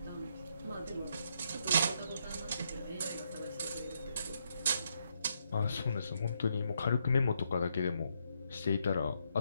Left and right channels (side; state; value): both; inverted; correlation -0.77